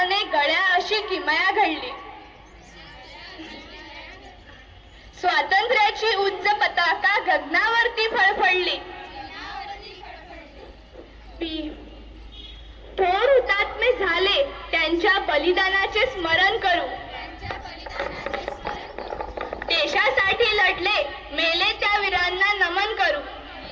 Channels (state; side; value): identical; both; correlation 1.00